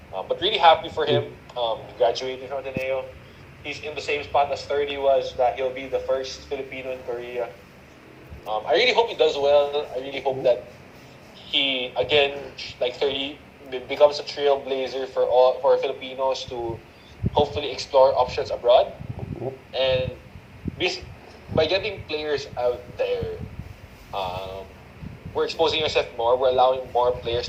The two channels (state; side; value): identical; both; correlation 1.00